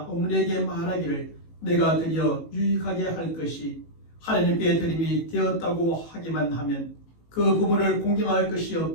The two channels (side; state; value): right; late; 18 ms